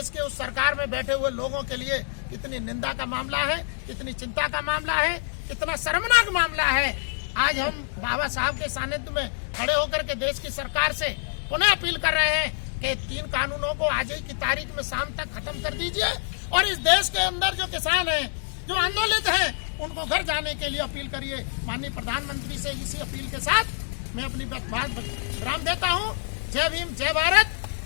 के उस सरकार में बैठे हुए लोगों के लिए कितनी निंदा का मामला है, कितनी चिंता का मामला है, कितना शर्मनाक मामला है। आज हम बाबा साहब के सानिध्य में खड़े होकर के देश की सरकार से पुनः अपील कर रहे हैं कि 3 कानूनों को आज ही की तारीख में शाम तक खत्म कर दीजिए और इस देश के अंदर जो किसान हैं, जो आंदोलित हैं, उनको घर जाने के लिए अपील करिए। माननीय प्रधानमंत्री से इसी अपील के साथ मैं अपनी बात विराम देता हूँ। जय भीम, जय भारत,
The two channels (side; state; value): right; silent; digital silence